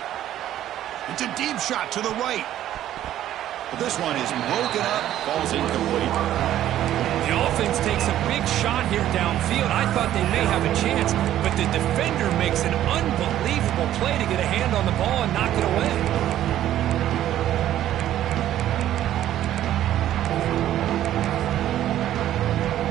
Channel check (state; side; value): quieter; left; 12.3 dB